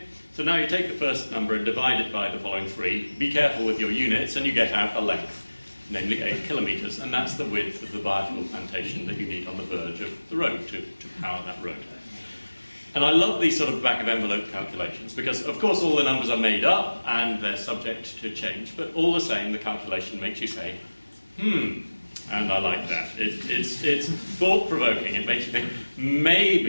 So now you take the first number and divide it by the following three. Be careful with your units, and you get out a length, namely 8 kilometres, and that's the width of the biofuel plantation that you need on the verge of the road to power that road. And I love these sort of back-of-envelope calculations, because of course all the numbers are made up and they're subject to change, but all the same the calculation makes you say, and I like that. It's thought-provoking. It makes you think,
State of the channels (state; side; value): inverted; both; correlation -1.00